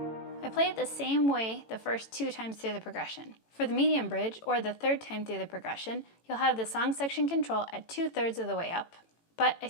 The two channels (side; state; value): right; late; 18 ms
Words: I play it the same way the first 2 times through the progression. For the medium bridge, or the 3rd time through the progression, you'll have the song section control at 2/3 of the way up, but I